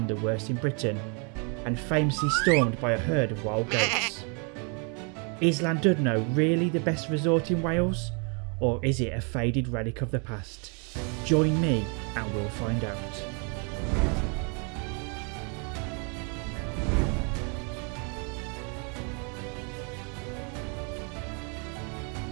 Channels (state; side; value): quieter; left; 36.7 dB